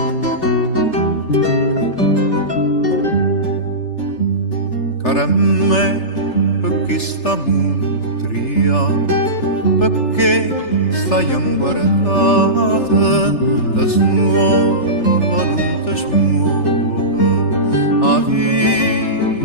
Cara me, perché sta mutria, perché stai inguardata, da smuova, non ti smuova, a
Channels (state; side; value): late; right; 3.4 ms